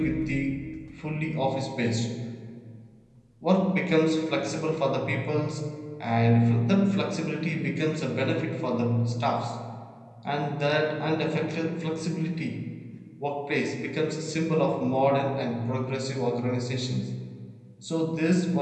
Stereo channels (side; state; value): both; identical; correlation 1.00